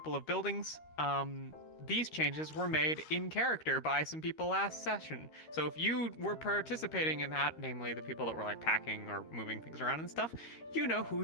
of buildings. These changes were made in character by some people last session. So if you were participating in that, namely the people that were packing or moving things around and stuff, you know who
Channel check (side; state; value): right; late; 13 ms